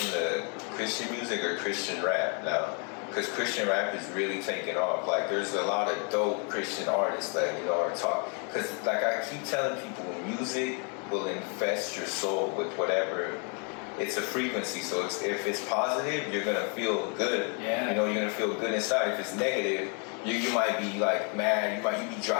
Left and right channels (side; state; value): right; quieter; 37.9 dB